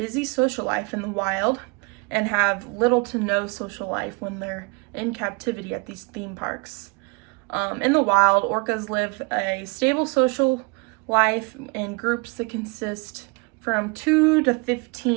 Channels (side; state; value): left; quieter; 29.5 dB